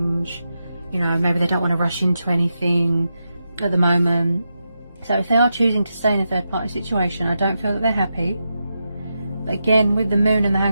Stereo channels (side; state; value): both; inverted; correlation -0.87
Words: You know, maybe they don't want to rush into anything at the moment. So if they are choosing to stay in a third party situation, I don't feel that they're happy. But again, with the Moon and the